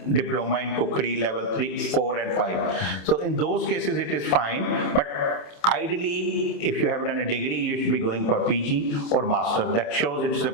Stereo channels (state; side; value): late; right; 28 ms